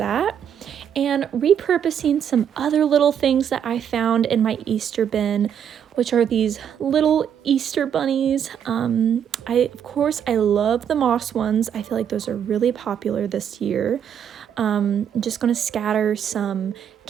And repurposing some other little things that I found in my Easter bin, which are these little Easter bunnies. Of course I love the moss ones. I feel like those are really popular this year. I'm just gonna scatter some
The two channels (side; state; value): left; quieter; 8.6 dB